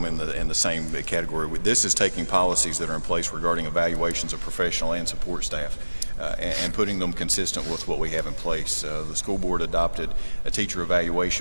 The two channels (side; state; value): both; inverted; correlation -1.00